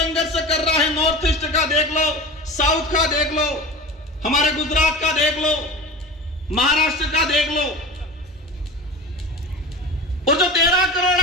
कर रहा है। नॉर्थ ईस्ट का देख लो, साउथ का देख लो, हमारे गुजरात का देख लो, महाराष्ट्र का देख लो। और जो 13 करोड़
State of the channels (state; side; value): normal; both; correlation 0.32